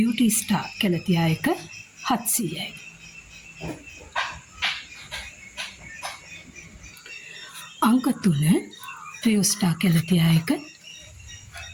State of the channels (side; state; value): both; identical; correlation 1.00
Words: ස්ටාර් කැලතියා එක 700යි. අංක 3 ෆියෝ ස්ටාර් කැලතියා එක.